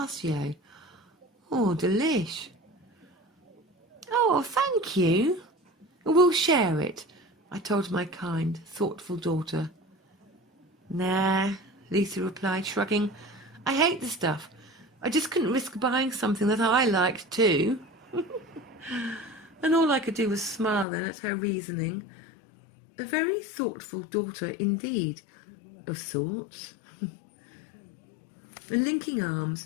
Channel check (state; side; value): drops out; right; at 20.9 s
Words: Oh, delish. Oh, thank you. We'll share it, I told my kind, thoughtful daughter. Nah, Lucy replied, shrugging. I hate the stuff. I just couldn't risk buying something that I liked too. And all I could do was smile then at her reasoning. A very thoughtful daughter indeed, of sorts. And linking